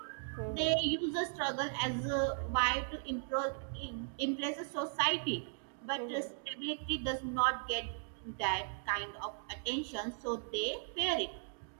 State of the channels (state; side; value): silent; left; digital silence